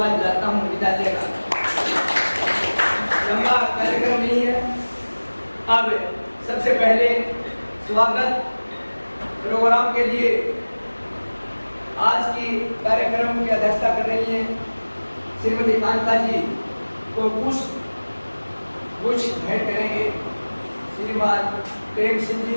दिलाता हूँ। विद्यालय का लंबा कार्यक्रम नहीं है। अब सबसे पहले स्वागत प्रोग्राम के लिए आज की कार्यक्रम की अध्यक्षता कर रही हैं श्रीमती कांता जी को कुछ भेंट करेंगे श्रीमान प्रेम सिंह जी,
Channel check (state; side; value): inverted; both; correlation -1.00